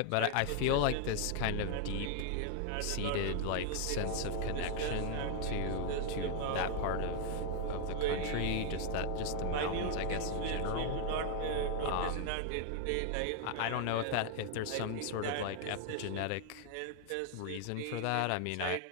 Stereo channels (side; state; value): both; different; correlation 0.00